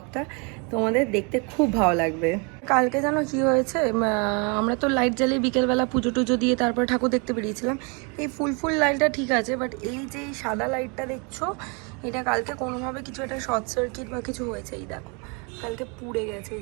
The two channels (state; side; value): quieter; left; 33.3 dB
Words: তোমাদের দেখতে খুব ভালো লাগবে। কালকে জানো কি হয়েছে, আমরা তো লাইট জ্বালিয়ে বিকেলবেলা পুজো টুজো দিয়ে তারপরে ঠাকুর দেখতে বেরিয়েছিলাম। এই ফুল লাইটটা ঠিক আছে, বাট এই যে সাদা লাইটটা দেখছো, এটা কালকে কোনোভাবে কিছু একটা শর্ট সার্কিট বা কিছু হয়েছে। এই দেখো, কালকে পুড়ে গেছে